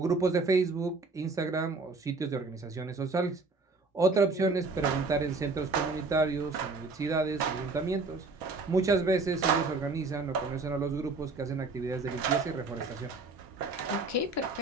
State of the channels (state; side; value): quieter; left; 3.7 dB